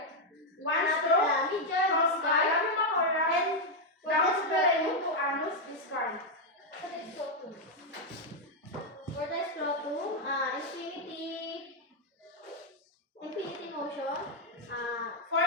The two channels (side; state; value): both; normal; correlation 0.01